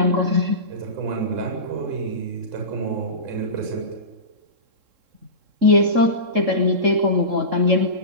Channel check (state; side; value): late; left; 3.7 ms